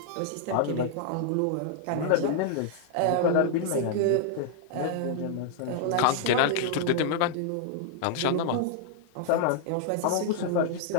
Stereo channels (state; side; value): different; both; correlation -0.01